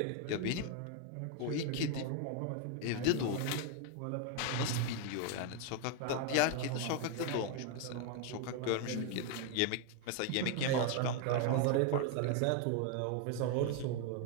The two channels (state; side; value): different; both; correlation 0.01